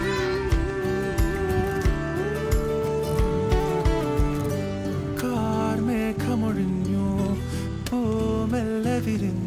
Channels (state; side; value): identical; both; correlation 1.00